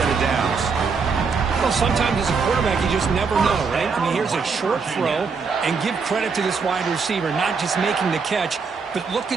of downs. Well, sometimes as a quarterback, you just never know, right? I mean, here's a short throw, and give credit to this wide receiver, not just making the catch, but look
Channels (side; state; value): left; quieter; 5.2 dB